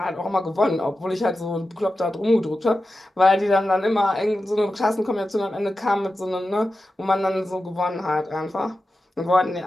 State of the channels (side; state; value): both; normal; correlation 0.92